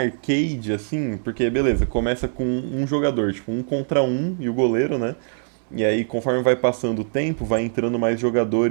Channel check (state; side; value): silent; left; digital silence